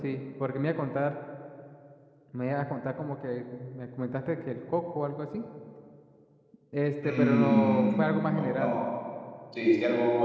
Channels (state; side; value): identical; both; correlation 1.00